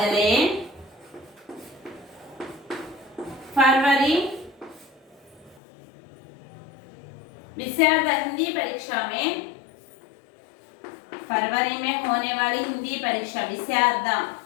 विषयार्ध हिंदी परीक्षा में, फरवरी में होने वाली हिंदी परीक्षा, विषयार्ध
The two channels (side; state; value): right; drops out; at 5.6 s